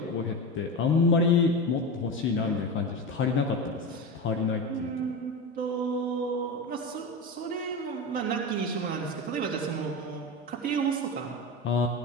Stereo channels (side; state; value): both; normal; correlation 0.22